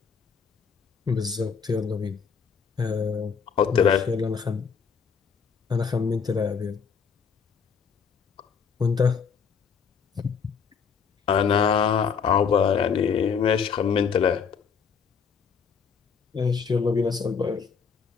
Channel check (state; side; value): quieter; right; 6.3 dB